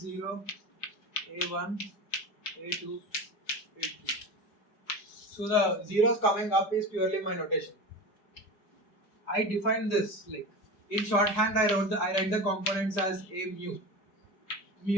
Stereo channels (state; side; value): late; right; 5.0 ms